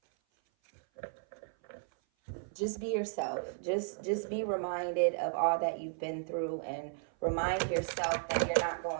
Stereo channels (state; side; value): silent; left; 55 dB below the other